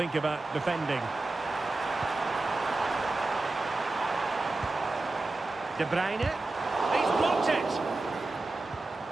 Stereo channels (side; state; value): left; quieter; 3.1 dB